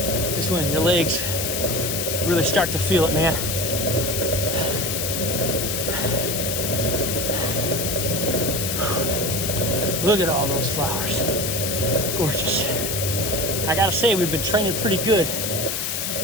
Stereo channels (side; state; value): left; noise; hiss, 1 dB below the sound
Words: This is when your legs really start to feel it, man. Look at all those flowers. Gorgeous. I gotta say, we've been training pretty good.